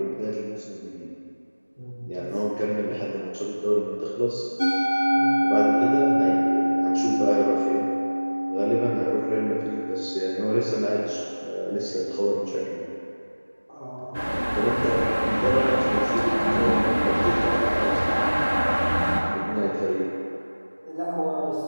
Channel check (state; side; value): inverted; both; correlation -1.00